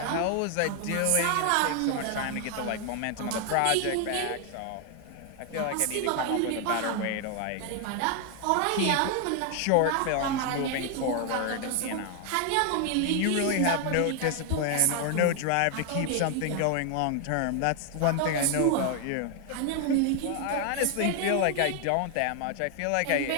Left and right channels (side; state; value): both; different; correlation 0.00